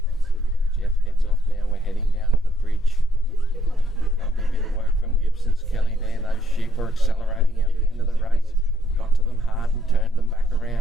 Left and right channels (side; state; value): both; normal; correlation 0.70